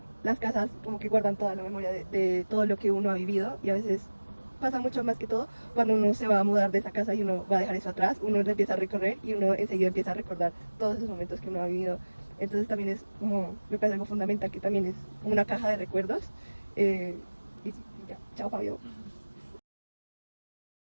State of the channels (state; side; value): inverted; both; correlation -1.00